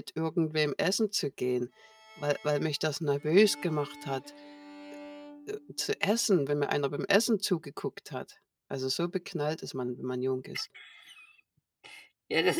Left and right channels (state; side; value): identical; both; correlation 1.00